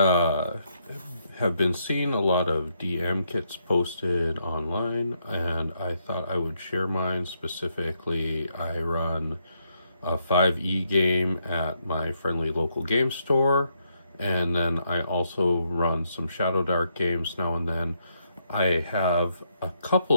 have been seeing a lot of DM kits posted online, and I thought I would share mine. Specifically, I run a 5e game at my friendly local game store, and then I also run some Shadowdark games now and then. I have a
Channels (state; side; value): inverted; both; correlation -0.77